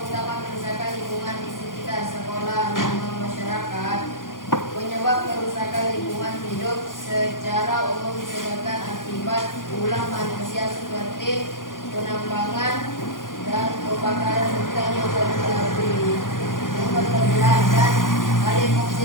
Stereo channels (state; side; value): late; right; 0.90 ms